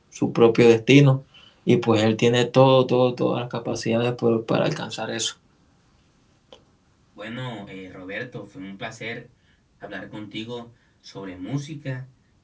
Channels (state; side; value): identical; both; correlation 1.00